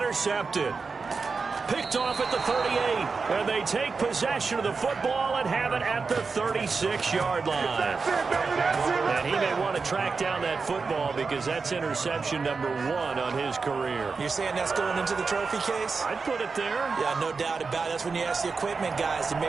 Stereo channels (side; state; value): left; quieter; 4.7 dB